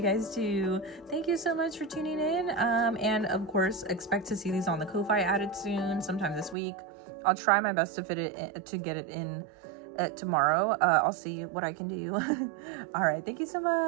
guys too. Thank you so much for tuning in, and of course expect to see these on the Ko-Fi added soon, sometime this week. I'll try my best to fit it in, to get it in tomorrow. I'll see what I can do. All right, thank you so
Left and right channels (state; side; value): drops out; left; at 6.6 s